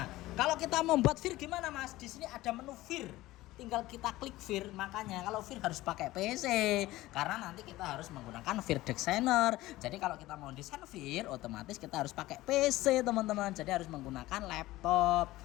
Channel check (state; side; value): quieter; right; 17.5 dB